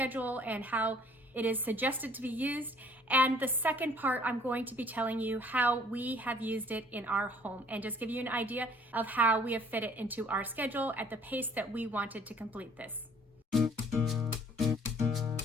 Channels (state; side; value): normal; both; correlation 0.57